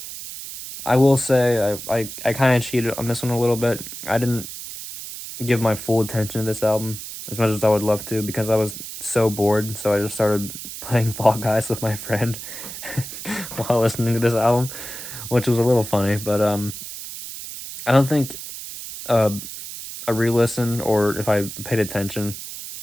will say I kind of cheated on this one a little bit. I didn't give my full attention to this album as much as I would love to because I was so bored, so I just started playing Fall Guys with my friend while listening to this album, which was a little funny, but I don't think a re-listen or if I paid attention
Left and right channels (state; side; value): noise; right; hiss, 10 dB below the sound